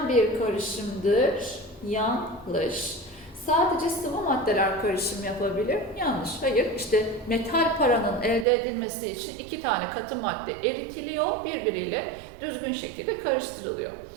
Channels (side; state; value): left; drops out; at 8.5 s